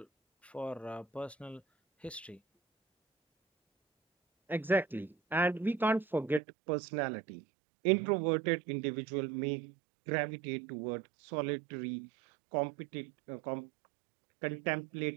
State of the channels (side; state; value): left; drops out; at 6.4 s